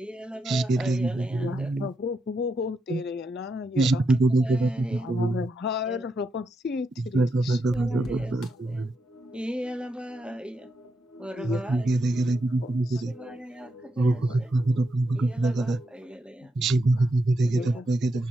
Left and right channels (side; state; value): both; normal; correlation 0.83